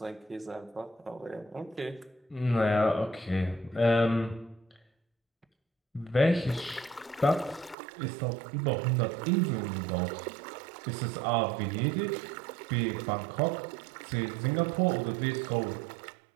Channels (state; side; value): drops out; left; at 7.8 s